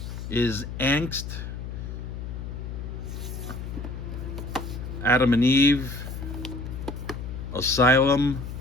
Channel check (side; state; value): left; noise; hum, 7 dB below the sound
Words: is Angst, Adam and Eve, Asylum,